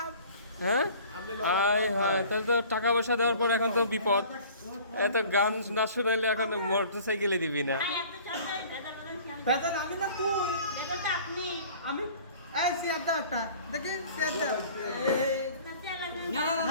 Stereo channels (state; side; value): inverted; both; correlation -0.47